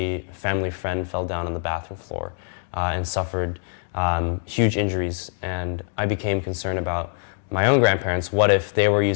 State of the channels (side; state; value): right; silent; digital silence